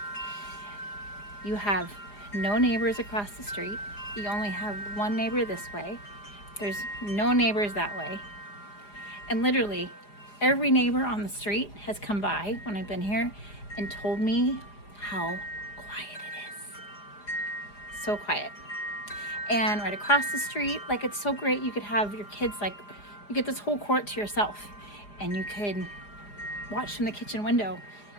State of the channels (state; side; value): late; right; 4.9 ms